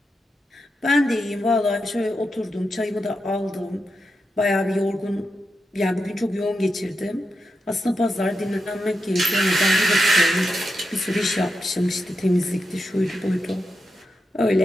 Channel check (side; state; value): both; normal; correlation 0.87